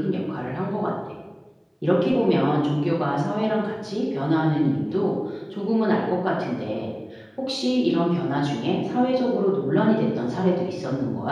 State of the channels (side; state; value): both; identical; correlation 1.00